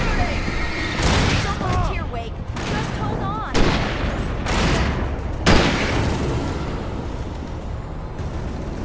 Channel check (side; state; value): both; identical; correlation 1.00